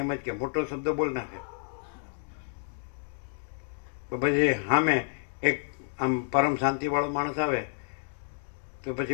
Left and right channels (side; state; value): right; silent; digital silence